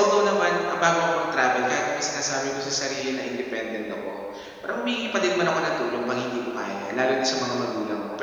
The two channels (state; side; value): identical; both; correlation 1.00